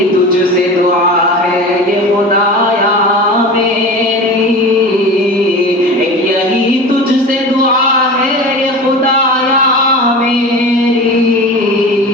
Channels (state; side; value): normal; both; correlation 0.33